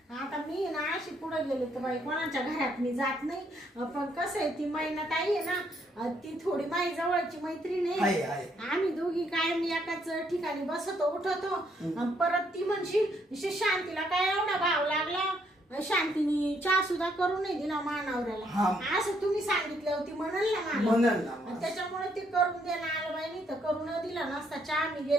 आता मी ना अशी पुढे गेले तर बाई कोणाच्या घरात मी जात नाही. पण कसं आहे ती महिन्यात आई आहे ना ती थोडी माझी जवळची मैत्रीण आहे, आहे. आहे. आम्ही दोघी कायम एकाच ठिकाणी बसतो उठतो. आणि परत ती म्हणशील शांतीला काय एवढा भाव लागला. शांतीने चहा सुद्धा करून नाही दिला मानावऱ्याला. हा. असं तुम्ही सांगितलं होती म्हणाल ना मला. म्हणाल ना. आणि त्याच्यामुळे ते करून देणं आलं बाई नाही तर करून दिला नसता चहा मी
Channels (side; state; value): both; normal; correlation 0.71